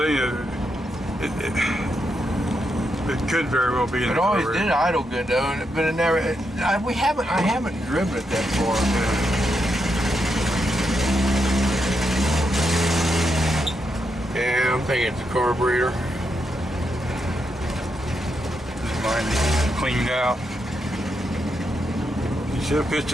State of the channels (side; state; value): both; normal; correlation 0.82